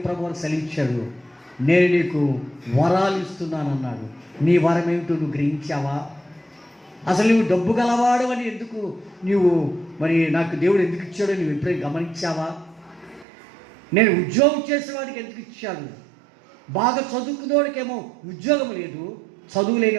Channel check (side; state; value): left; drops out; at 13.2 s